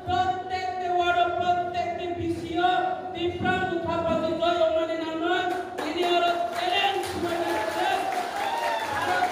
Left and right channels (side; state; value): both; identical; correlation 1.00